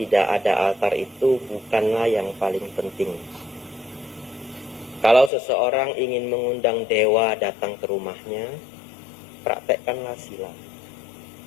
ada altar itu bukanlah yang paling penting. Kalau seseorang ingin mengundang dewa datang ke rumahnya, praktekkanlah sila.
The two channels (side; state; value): right; drops out; at 5.3 s